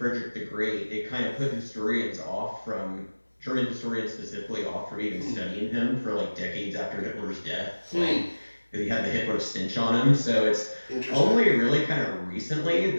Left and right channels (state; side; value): inverted; both; correlation -1.00